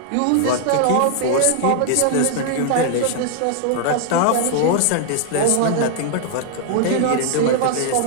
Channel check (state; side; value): different; both; correlation 0.00